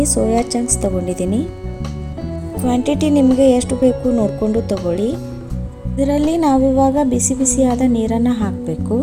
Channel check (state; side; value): identical; both; correlation 1.00